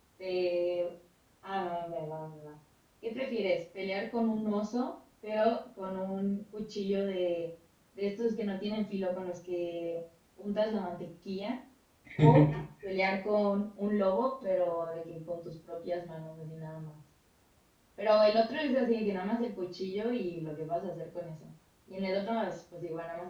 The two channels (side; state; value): both; identical; correlation 1.00